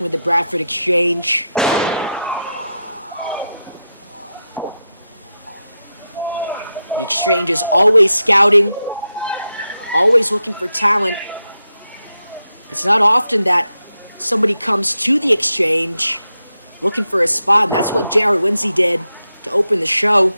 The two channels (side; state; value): both; inverted; correlation -0.87